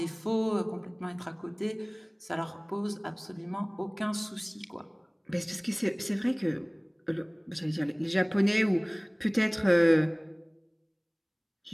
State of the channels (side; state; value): both; identical; correlation 1.00